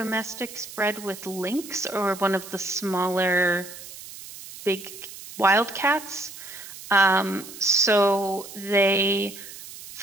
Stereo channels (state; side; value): noise; right; hiss, 14 dB below the sound